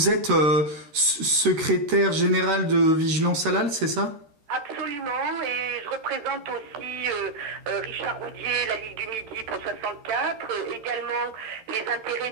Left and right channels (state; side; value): late; left; 13 ms